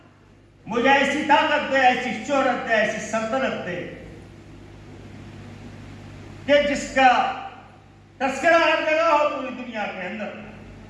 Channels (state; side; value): identical; both; correlation 1.00